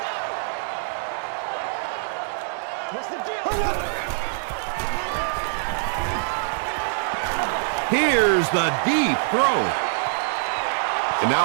Here's the deep throw. And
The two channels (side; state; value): left; silent; 62 dB below the other